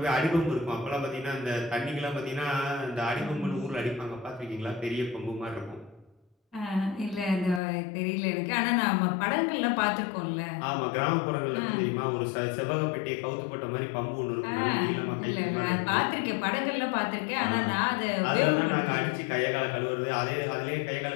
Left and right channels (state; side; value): drops out; right; at 7.6 s